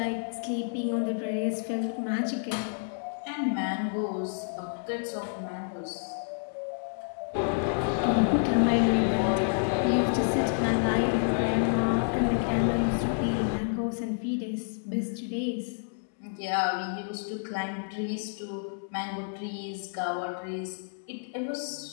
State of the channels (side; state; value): right; silent; digital silence